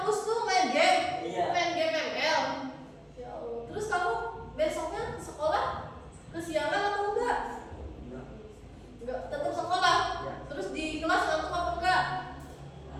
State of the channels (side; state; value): both; identical; correlation 1.00